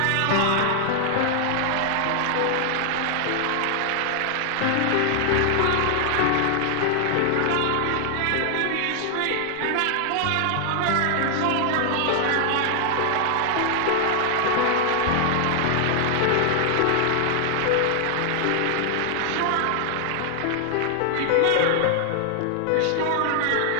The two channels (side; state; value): both; different; correlation 0.00